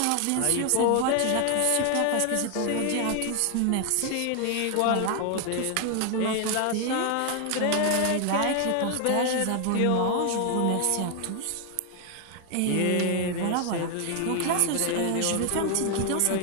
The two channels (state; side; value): different; both; correlation 0.00